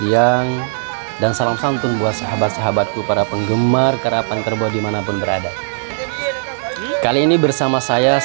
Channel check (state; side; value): silent; left; digital silence